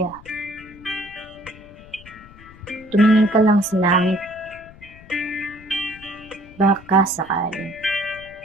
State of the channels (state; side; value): noise; left; rumble, 21 dB below the sound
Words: Tumingin ka lang sa langit, baka sakali